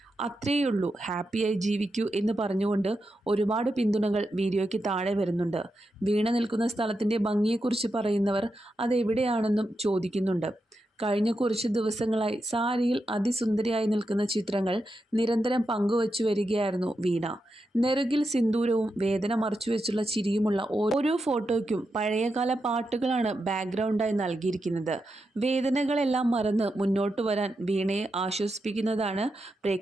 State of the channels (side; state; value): both; normal; correlation 0.87